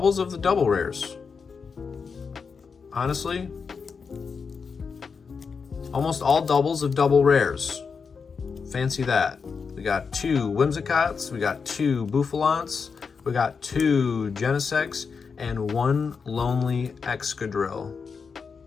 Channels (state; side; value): quieter; right; 5.5 dB